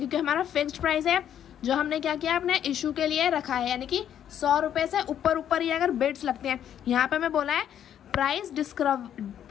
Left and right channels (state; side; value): quieter; right; 9.9 dB